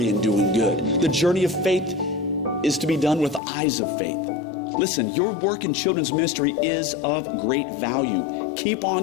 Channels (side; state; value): right; drops out; at 3.4 s